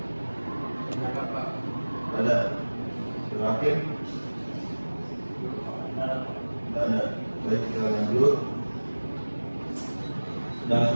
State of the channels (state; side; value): inverted; both; correlation -1.00